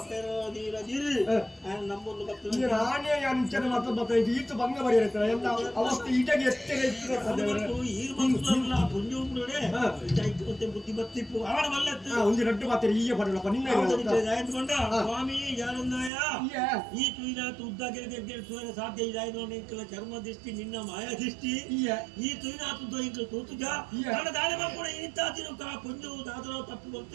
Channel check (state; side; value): drops out; left; at 16.1 s